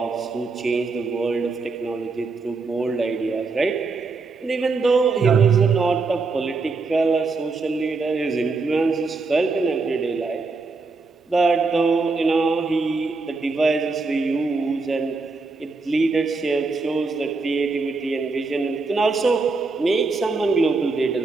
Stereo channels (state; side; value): quieter; left; 4.0 dB